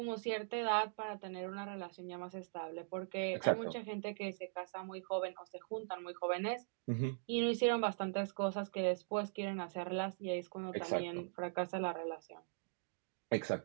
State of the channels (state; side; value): silent; left; digital silence